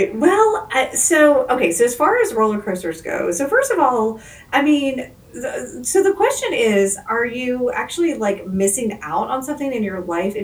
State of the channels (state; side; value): identical; both; correlation 1.00